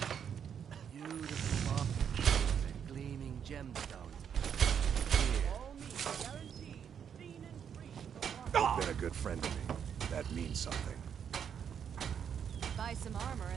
Beautiful marble and gleaming gemstones. You've been a good friend to me. That means something. Buy some armor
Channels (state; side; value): quieter; left; 8.0 dB